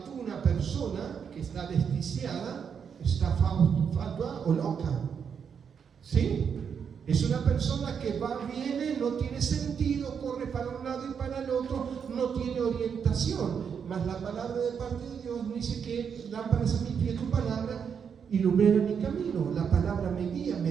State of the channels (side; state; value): left; quieter; 7.0 dB